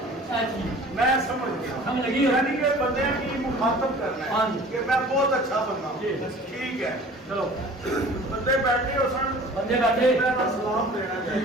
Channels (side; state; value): both; normal; correlation 0.45